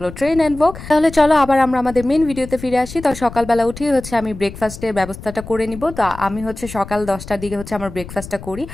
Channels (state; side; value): noise; left; rumble, 13 dB below the sound